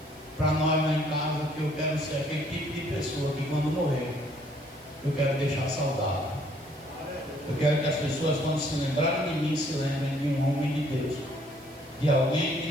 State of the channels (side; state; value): right; noise; hiss, 25 dB below the sound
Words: para nós lá em casa, que eu quero ser aquele tipo de pessoa que quando morrer, eu quero deixar saudade. Eu quero que as pessoas, quando se lembrarem de mim, se lembrem de um homem de Deus, de alguém que